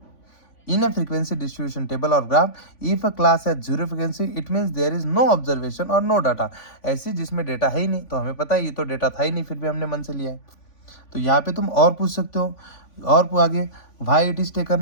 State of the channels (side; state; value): right; late; 3.5 ms